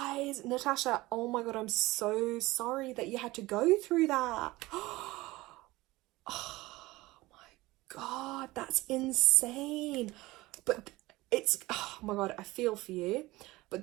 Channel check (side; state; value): left; quieter; 19.7 dB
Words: Natasha, oh my God, I'm so sorry that you had to go through that. Oh my God, that's insane. But it's, oh my God, I feel for you.